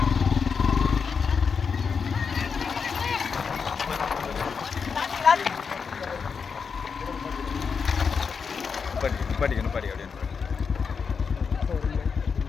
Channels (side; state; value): right; quieter; 5.8 dB